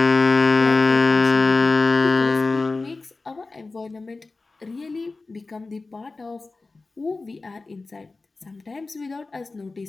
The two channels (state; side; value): quieter; right; 3.6 dB